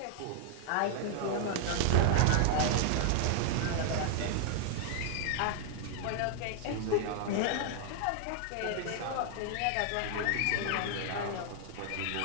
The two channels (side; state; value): both; different; correlation -0.01